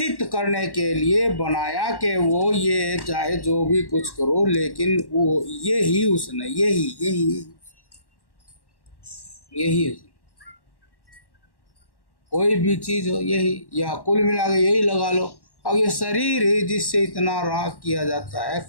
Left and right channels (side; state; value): right; late; 1.1 ms